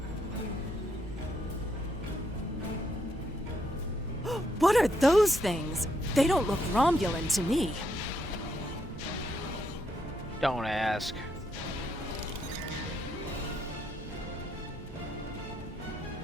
What are those things? They don't look Romulan to me. Don't ask.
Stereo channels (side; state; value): both; normal; correlation 0.76